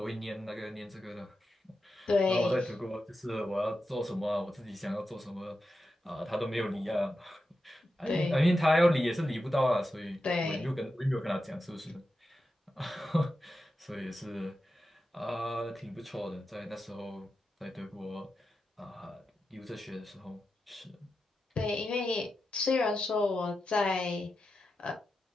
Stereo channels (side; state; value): both; normal; correlation 0.90